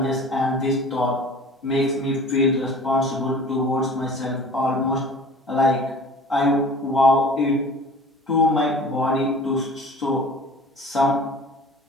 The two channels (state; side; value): normal; both; correlation 0.43